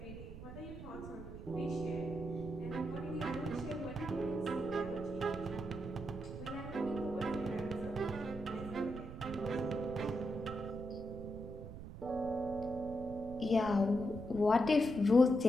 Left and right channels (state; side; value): noise; right; rumble, 11 dB below the sound